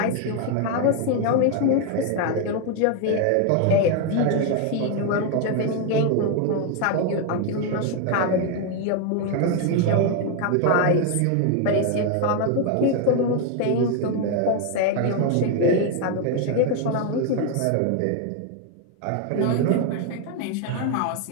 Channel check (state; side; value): different; both; correlation 0.01